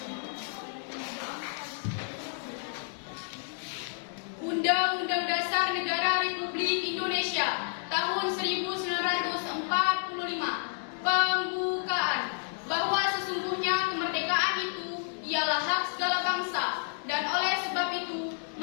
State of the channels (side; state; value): right; silent; 58 dB below the other